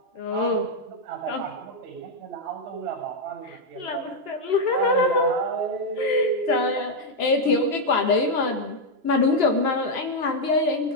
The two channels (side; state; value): left; late; 2.9 ms